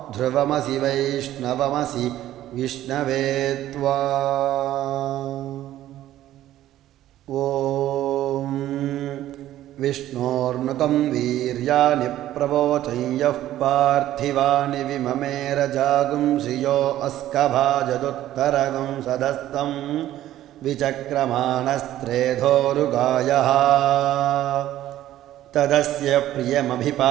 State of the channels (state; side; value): quieter; left; 13.4 dB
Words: वैष्णवमसि विष्णवे त्वा। ॐ विष्णोर्नुकं वीर्याणि प्रवोचं यः पार्थिवानि विममेरजागुं श्रियो अस्कभाजदुत्तरगुं सधस्तं विचक्रमाणस्त्रेधोरुगायः तदस्य